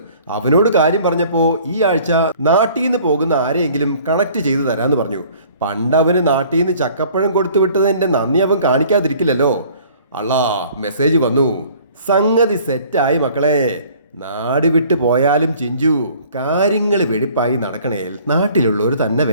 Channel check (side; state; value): both; inverted; correlation -0.53